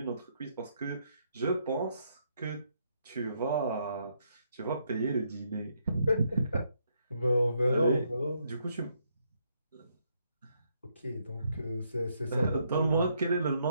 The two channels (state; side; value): inverted; both; correlation -0.75